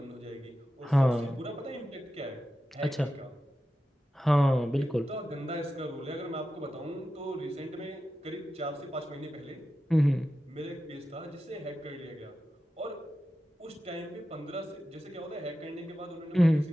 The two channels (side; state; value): both; normal; correlation 0.91